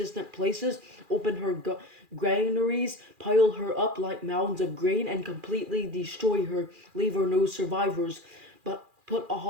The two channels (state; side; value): late; left; 2.4 ms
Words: places, open her granaries, pile her up like mounds of grain, and completely destroy her. Leave her no survivors, but put